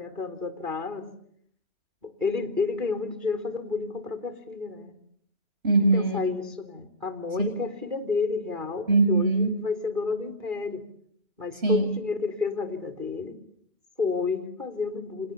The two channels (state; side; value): late; left; 3.0 ms